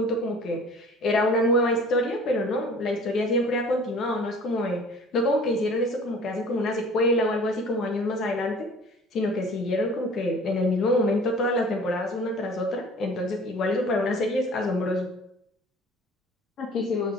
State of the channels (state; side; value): normal; both; correlation 0.46